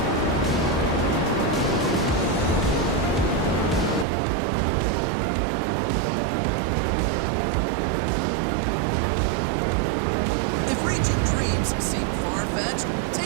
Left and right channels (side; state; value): left; drops out; at 4.0 s